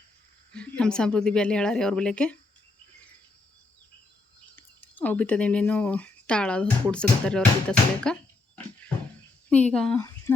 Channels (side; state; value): right; quieter; 3.5 dB